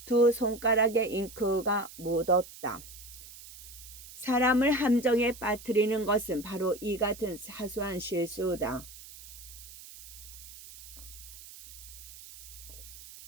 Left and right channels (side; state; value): right; noise; hiss, 16 dB below the sound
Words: 두 손가락에 잉크가 묻었다. 사람을 함정에 빠뜨리는 것은 바로 이 같은 사소한 실수다.